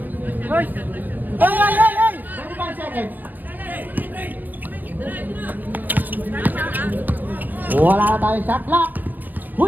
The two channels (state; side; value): late; left; 0.086 ms